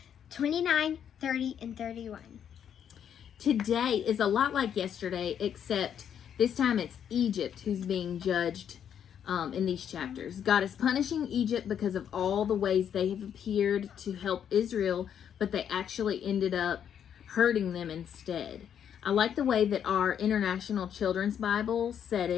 29, 30, and 31. Today is a lot like yesterday, except this time it's Egypt who's being judged in these chapters. God is punishing Egypt because of all the ways they have appeared to help Israel, but they actually ended up hurting them instead. I like the way that our International Children's Bible said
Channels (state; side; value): quieter; right; 8.8 dB